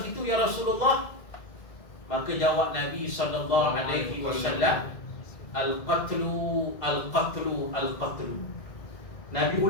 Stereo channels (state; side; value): late; right; 2.1 ms